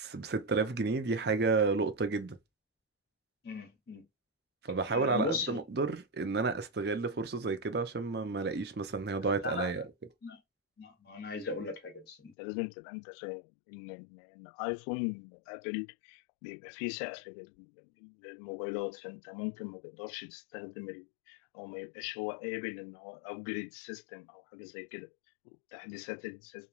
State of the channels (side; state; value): right; drops out; at 12.4 s